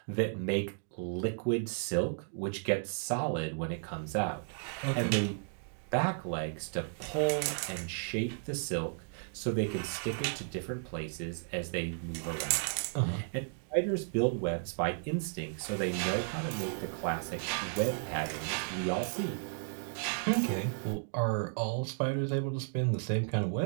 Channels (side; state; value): left; silent; digital silence